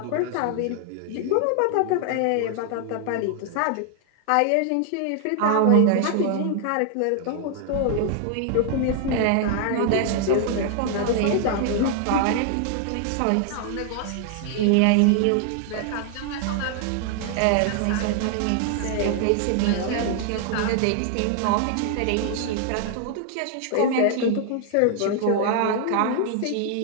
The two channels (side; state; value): both; different; correlation 0.00